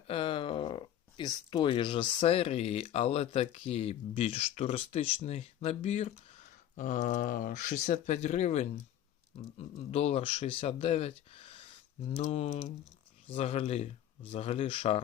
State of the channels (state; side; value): quieter; right; 11.2 dB